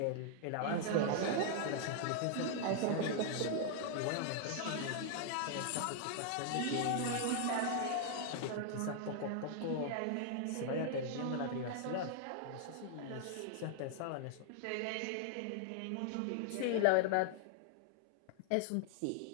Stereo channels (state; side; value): different; both; correlation 0.00